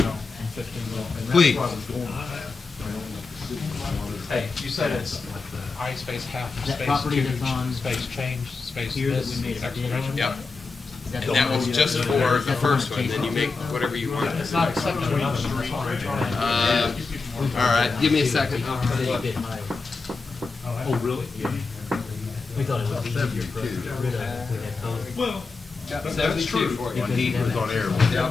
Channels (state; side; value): quieter; right; 4.2 dB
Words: that? 15 minutes. Please. Hey, you said it's I space half, That space property two, that's on space change, space Here that this, we made a bid exclamation. on? Yep, Is that and the that one was you- just is for that the first one, Chase then you make Hospital? whatever you want. It's not accepting another All right, give me a second. It's a little bit higher. Oh, really? We thought it would be easier for us to get rid of it if we had both. Well, That's true. When he was on air.